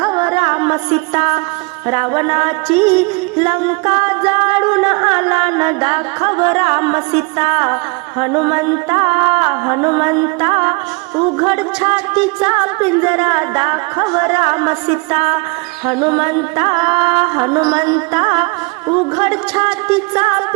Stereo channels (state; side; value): quieter; left; 28.9 dB